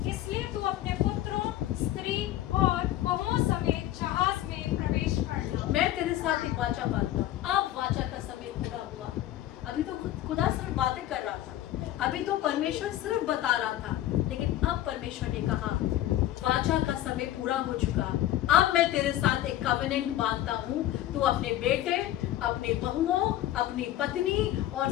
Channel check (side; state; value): right; quieter; 13.6 dB